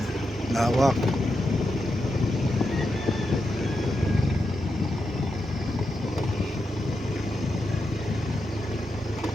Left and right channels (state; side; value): normal; both; correlation 0.86